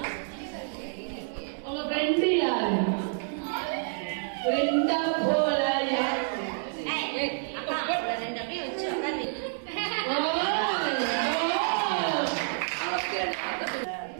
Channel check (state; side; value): silent; left; digital silence